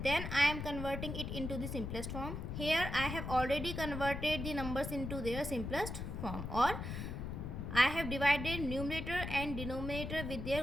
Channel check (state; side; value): noise; left; rumble, 5 dB below the sound